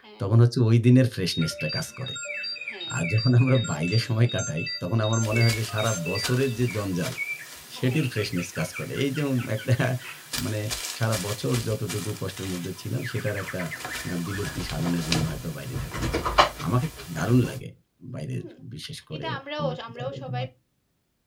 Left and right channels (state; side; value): identical; both; correlation 1.00